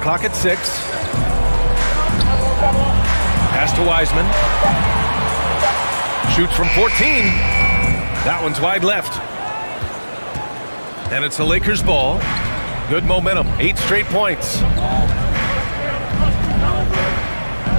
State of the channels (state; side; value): inverted; both; correlation -1.00